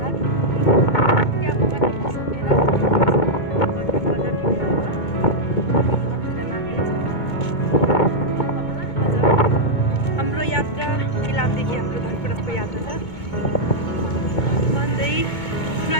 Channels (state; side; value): late; right; 2.2 ms